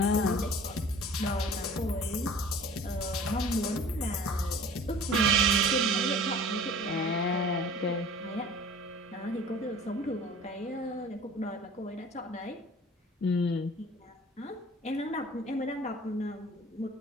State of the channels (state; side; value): normal; both; correlation 0.46